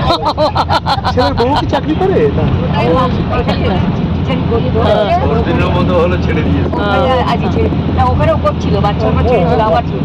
ছেলের বউ কি চাকরি করে? ছেড়ে দিয়েছে। ওখানেও করছিল, বাচ্চা ছেড়েছিল, আবার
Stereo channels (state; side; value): identical; both; correlation 1.00